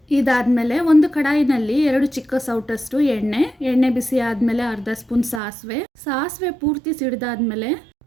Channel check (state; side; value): drops out; left; at 5.4 s